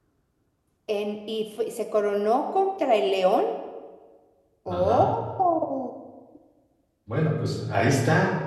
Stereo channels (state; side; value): identical; both; correlation 1.00